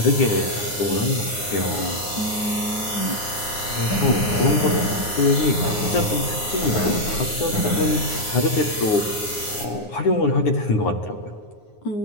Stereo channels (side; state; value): right; late; 9.6 ms